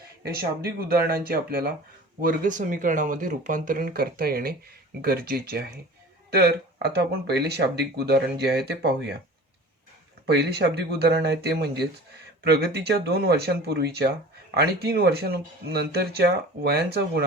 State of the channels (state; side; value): normal; both; correlation 0.41